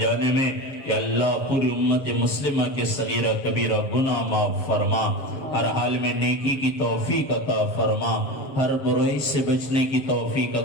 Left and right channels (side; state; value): right; late; 7.1 ms